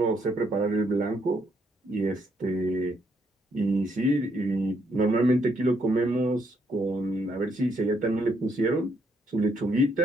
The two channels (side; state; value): both; normal; correlation 0.73